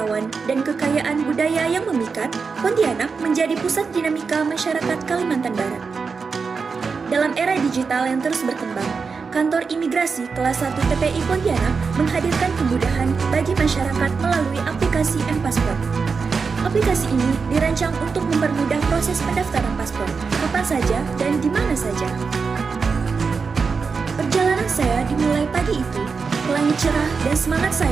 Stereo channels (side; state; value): left; quieter; 5.1 dB